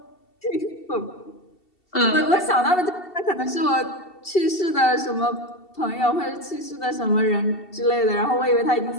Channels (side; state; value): right; late; 2.7 ms